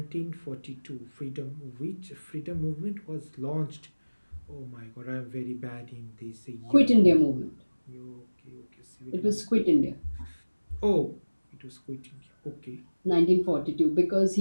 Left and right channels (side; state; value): both; inverted; correlation -1.00